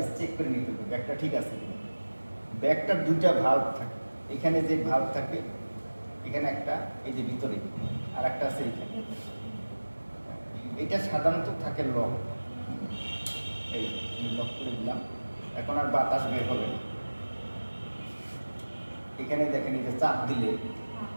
চেক করে নিতে হবে ব্যাগটা ঠিক আছে কিনা। ব্যাগটার 2টা ভাল্ব থাকে, এখানে যে ভাল্ব থাকে এখানে একটা, এই যে ভিতরে আর একটা আছে এইখানে, এটা সাধারণত থাকে লক, এই লক করে দিলাম, এখন আর বাতাস বের হবে না। এখানে দেখেন এই যে চাপ দিলে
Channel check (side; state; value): both; inverted; correlation -1.00